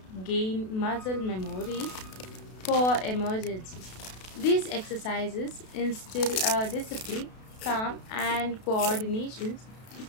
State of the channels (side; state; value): right; late; 32 ms